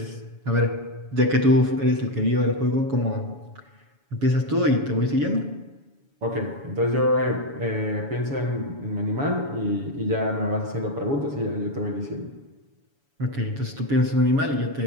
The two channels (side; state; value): left; late; 7.1 ms